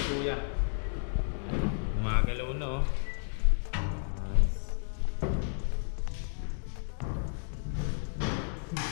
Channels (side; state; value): right; silent; digital silence